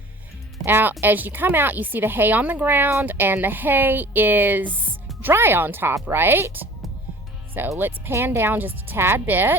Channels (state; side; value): normal; both; correlation 0.46